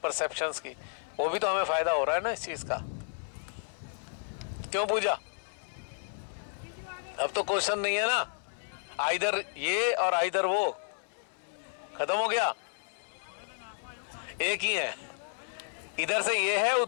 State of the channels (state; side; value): silent; right; digital silence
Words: की, वो भी तो हमें फ़ायदा हो रहा है ना इस चीज़ का। क्यों पूजा? अब तो क्वेश्चन नहीं है ना, आइदर ये और आइदर वो, खत्म हो गया, एक ही है। इधर से ये है,